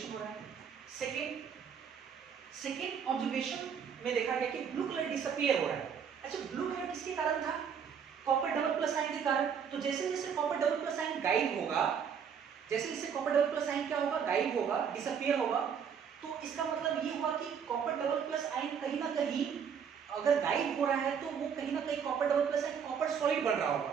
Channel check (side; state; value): left; quieter; 7.3 dB